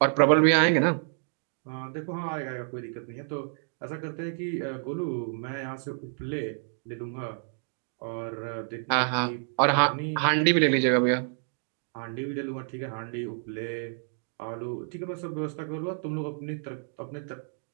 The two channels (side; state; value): left; silent; digital silence